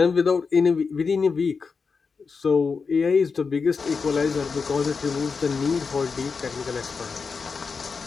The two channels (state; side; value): quieter; right; 5.1 dB